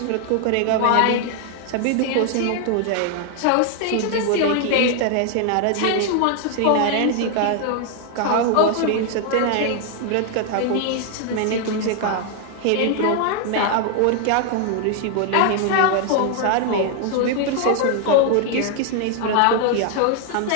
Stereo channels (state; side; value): different; both; correlation 0.00